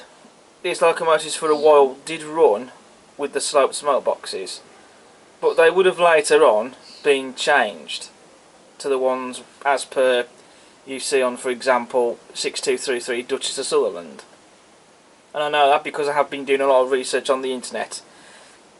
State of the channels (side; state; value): both; identical; correlation 1.00